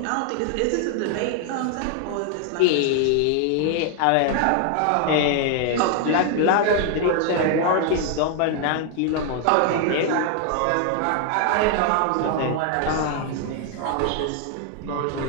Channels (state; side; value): different; both; correlation 0.00